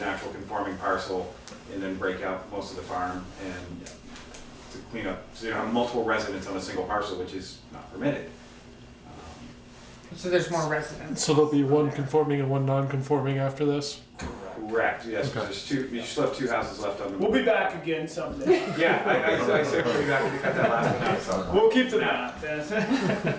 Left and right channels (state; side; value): identical; both; correlation 1.00